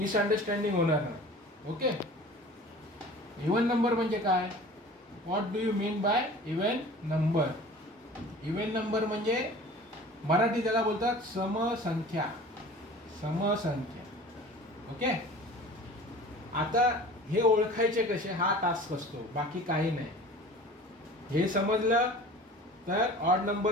होणार नाही. ओके, इवन नंबर म्हणजे काय? What do you mean by even number? Even number म्हणजे मराठी त्याला बोलतात समसंख्या. समसंख्या. ओके, आता हे ओळखायचे कसे, हा टास्क असतो, बाकी काही नाही. हे समजलं तर ऑड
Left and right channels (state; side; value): normal; both; correlation 0.42